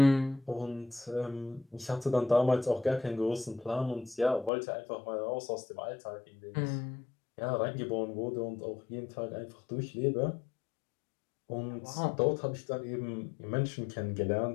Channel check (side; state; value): right; drops out; at 4.5 s